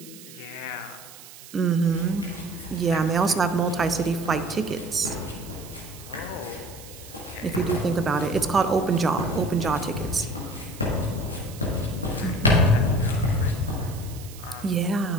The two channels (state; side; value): noise; right; hiss, 18 dB below the sound